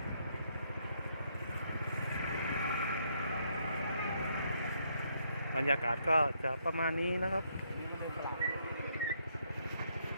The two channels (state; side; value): inverted; both; correlation -0.74